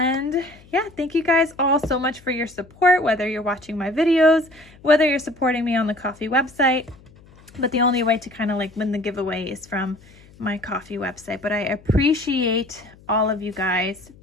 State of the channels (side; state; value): left; noise; hum, 25 dB below the sound